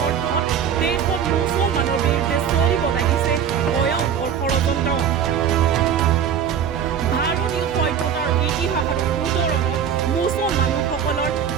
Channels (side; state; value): left; quieter; 8.1 dB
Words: অৰ্থত দেশত মুছলমানৰ বিৰুদ্ধে চলিব লাগিছে ভয়ংকৰ ষড়যন্ত্ৰ। ভাৰতীয় সভ্যতাৰ ইতিহাস আৰু উত্তৰণত মুছলমান লোকসকলৰ